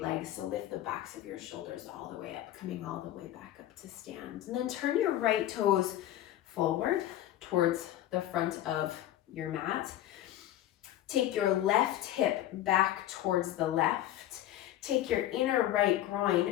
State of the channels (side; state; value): right; quieter; 13.2 dB